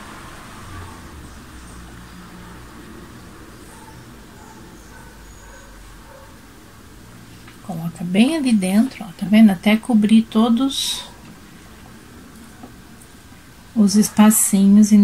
Coloca bem ali dentro, ó, tá vendo? Até cobrir todos os espacinhos e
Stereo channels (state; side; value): identical; both; correlation 1.00